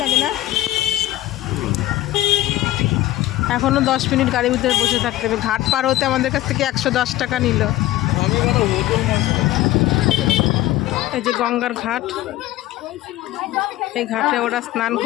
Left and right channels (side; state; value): right; quieter; 15.8 dB